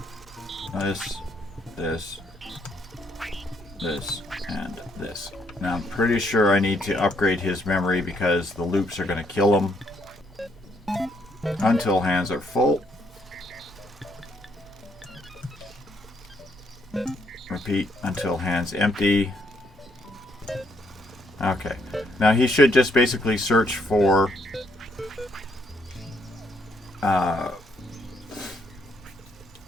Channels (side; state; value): both; normal; correlation 0.72